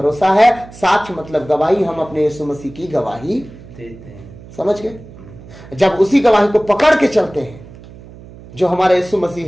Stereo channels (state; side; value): noise; right; hum, 19 dB below the sound